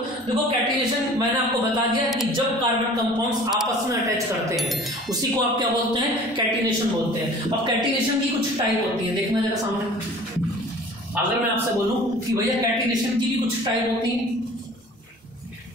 देखो कैटिनेशन मैंने आपको बता दिया कि जब कार्बन कंपाउंड्स आपस में अटैच करते हैं उसी को आप क्या बोलते हैं, कैटिनेशन बोलते हैं। अब कैटिनेशन की कुछ टाइप होती है, देखना जरा सामने। अगर मैं आपसे बोलूं कि भैया कैटिनेशन की भी कुछ टाइप होती है,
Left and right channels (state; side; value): normal; both; correlation 0.46